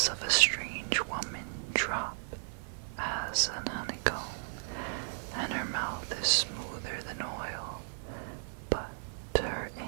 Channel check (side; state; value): left; silent; digital silence